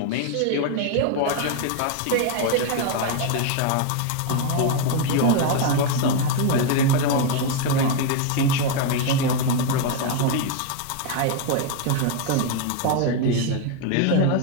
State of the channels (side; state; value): both; different; correlation 0.01